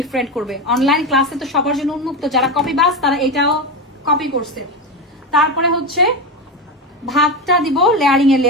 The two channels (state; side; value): normal; both; correlation 0.16